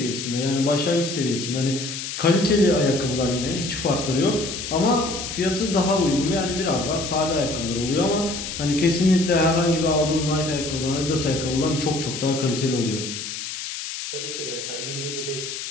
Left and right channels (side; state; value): left; noise; hiss, 7 dB below the sound